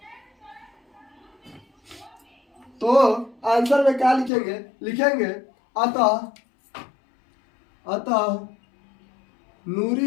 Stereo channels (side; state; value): right; drops out; at 4.3 s